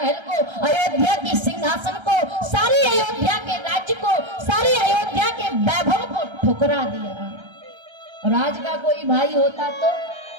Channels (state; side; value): late; left; 1.3 ms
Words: को, अयोध्या की सिंहासन को, सारी अयोध्या के राज्य को, सारी अयोध्या के वैभव को ठुकरा दिया। और आज का कोई भाई होता तो